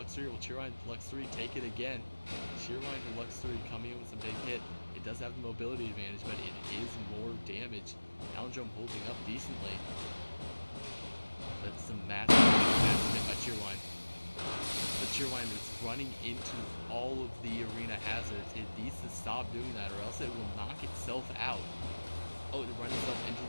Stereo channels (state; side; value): inverted; both; correlation -1.00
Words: 3? Will Cheerwine Deluxe 3 take it again? Cheerwine Deluxe 3 coming in with some big hit. It does have the mobility advantage, but it is more damage. Palindrome holding up decently. But some massive hit by Cheerwine. But Cheerwine is running into all of the arena hazards. It needs to stop doing that, or else it will knock itself out. Oh, to run itself into